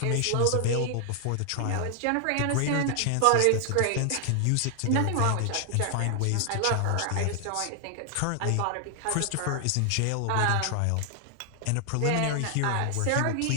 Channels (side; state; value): both; different; correlation 0.00